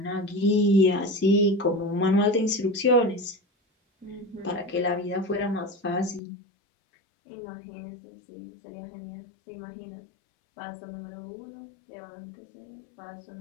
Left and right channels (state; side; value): drops out; right; at 6.2 s